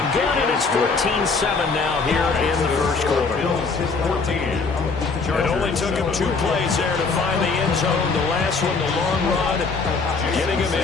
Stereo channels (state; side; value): quieter; right; 4.4 dB